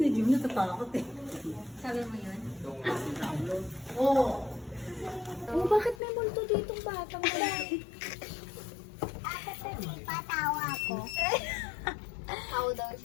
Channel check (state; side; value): drops out; right; at 6.0 s